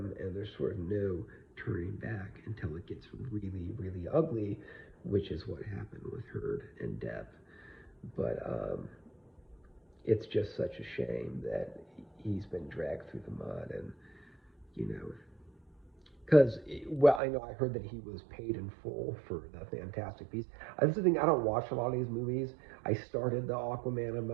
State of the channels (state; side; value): drops out; left; at 17.2 s